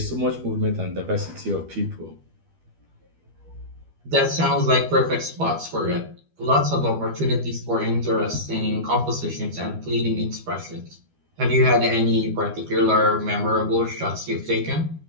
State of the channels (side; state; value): left; late; 12 ms